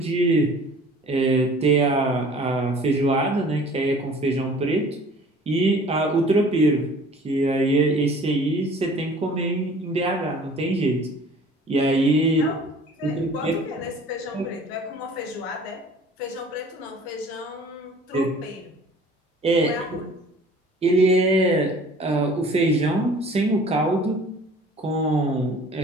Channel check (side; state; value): both; normal; correlation 0.49